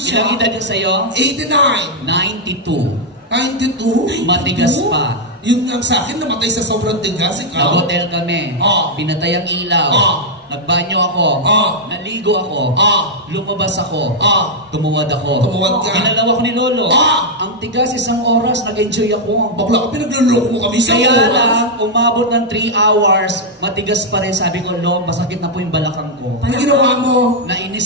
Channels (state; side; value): normal; both; correlation -0.03